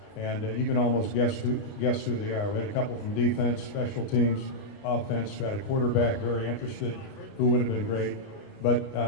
And you can almost guess who they are. We had a couple from defense, special teams, offense. We had a quarterback very interested who would have been great.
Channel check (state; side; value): late; right; 29 ms